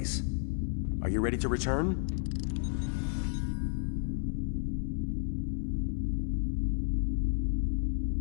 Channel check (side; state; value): right; silent; 56 dB below the other